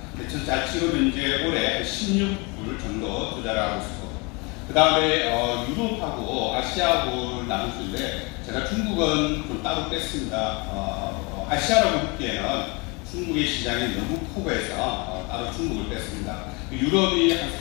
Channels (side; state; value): right; quieter; 28.9 dB